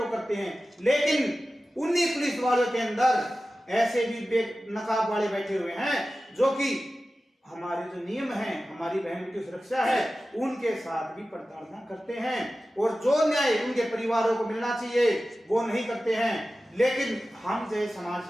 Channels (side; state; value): both; normal; correlation 0.95